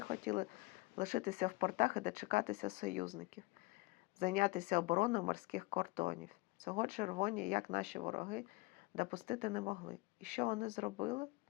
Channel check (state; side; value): quieter; right; 23.6 dB